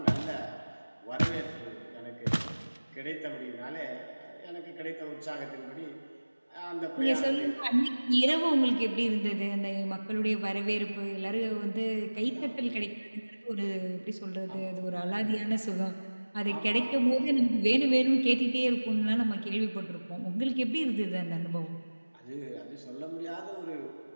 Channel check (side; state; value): both; inverted; correlation -1.00